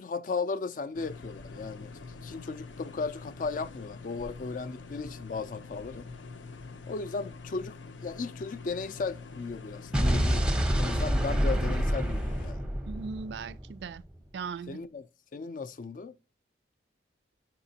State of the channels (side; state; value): both; normal; correlation 0.70